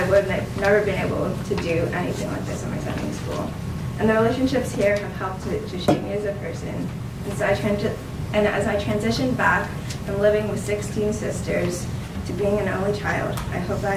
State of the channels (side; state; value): both; identical; correlation 1.00